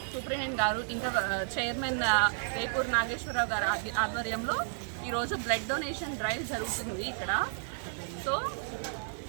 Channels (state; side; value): silent; left; 56 dB below the other